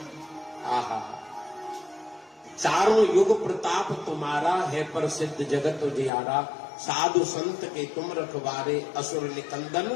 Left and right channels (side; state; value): right; drops out; at 6.1 s